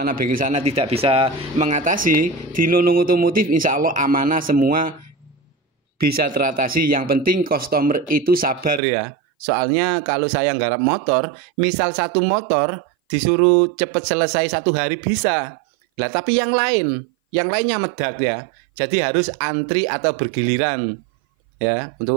bisa mengatasi, di Nunung Otomotif insya Allah amanah semua bisa teratasi. Yang penting customer itu sabar ya. Soalnya kalau saya nggarap motor, misal satu motor disuruh cepet selesai 1 hari bisa. Lah tapi yang lainnya medak ya. Jadi harus antri atau bergiliran. Ya,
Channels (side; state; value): left; drops out; at 8.8 s